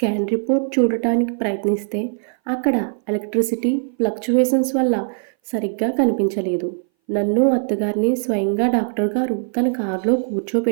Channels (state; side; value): silent; left; 61 dB below the other